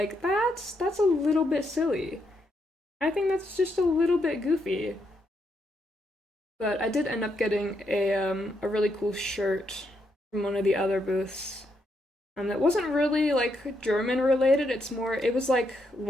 that's a little bit silly. I think that's just a little bit goofy. But I did end up getting a really cool shirt from one of the other booths. That wasn't really like German related. It was like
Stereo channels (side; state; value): both; normal; correlation 0.78